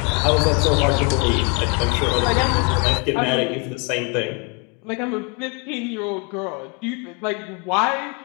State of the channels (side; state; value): right; quieter; 33.1 dB